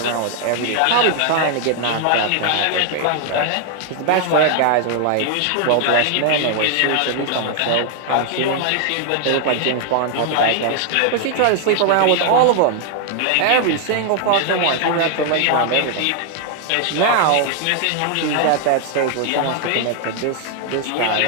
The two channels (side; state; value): both; different; correlation 0.00